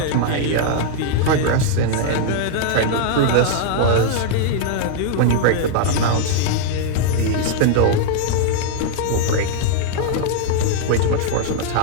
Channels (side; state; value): both; different; correlation -0.01